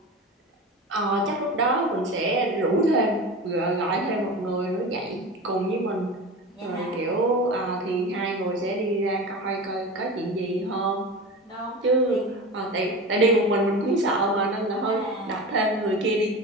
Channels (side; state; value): both; normal; correlation 0.30